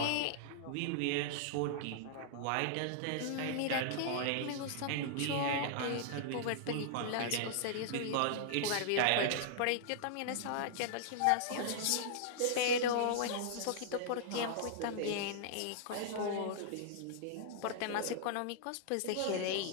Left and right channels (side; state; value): both; different; correlation -0.01